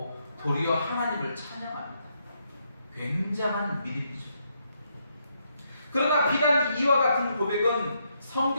도리어 하나님을 찬양합니다. 굉장한 믿음이죠. 그러나 비단 이와 같은 고백은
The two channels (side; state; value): both; inverted; correlation -0.77